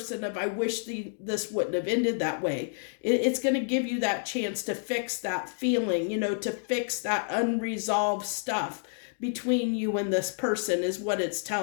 of, I wish this wouldn't have ended that way. It's going to give you that chance to fix that feeling, to fix that unresolved stuff between you and this person, is what it's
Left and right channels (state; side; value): silent; right; digital silence